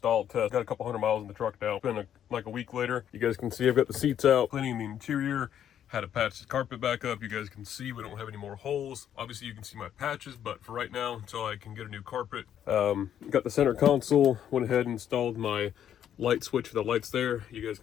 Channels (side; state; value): right; quieter; 9.8 dB